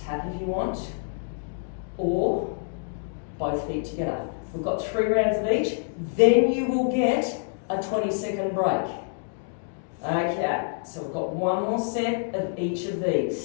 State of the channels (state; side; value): silent; right; digital silence